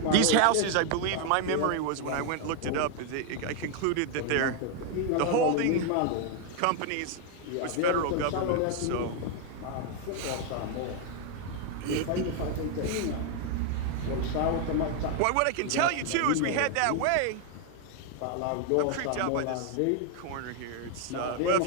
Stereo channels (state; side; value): different; both; correlation 0.01